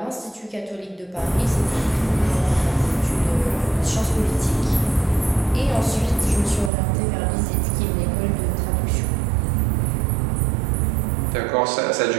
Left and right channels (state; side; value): drops out; left; at 6.7 s